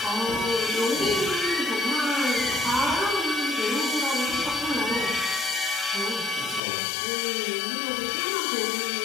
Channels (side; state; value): right; drops out; at 6.6 s